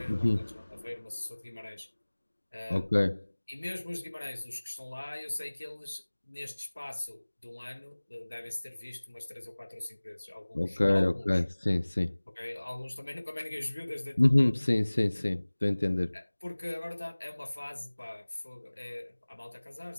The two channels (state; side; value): inverted; both; correlation -1.00